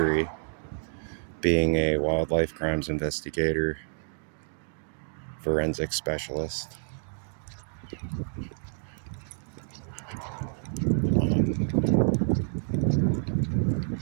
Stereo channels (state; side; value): silent; left; 57 dB below the other